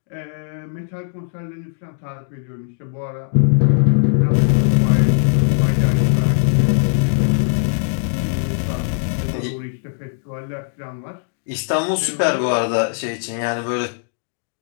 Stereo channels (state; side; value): silent; right; digital silence